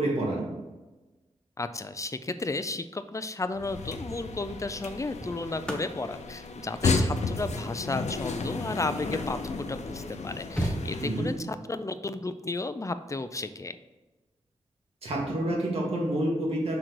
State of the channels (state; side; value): normal; both; correlation 0.67